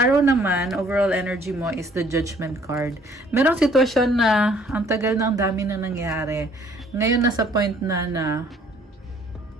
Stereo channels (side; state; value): both; normal; correlation 0.59